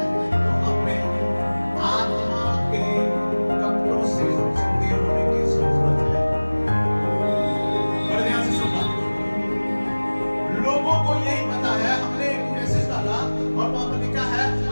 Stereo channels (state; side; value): inverted; both; correlation -1.00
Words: तो अपने आत्मा के कब्रों से चंगे होने की जरूरत है। बड़े ध्यान से सुनना, लोगों को यही पता है, हमने एक मैसेज डाला और वहां पर लिखा है